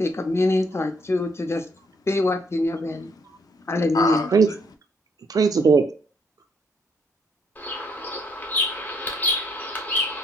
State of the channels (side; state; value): both; normal; correlation 0.69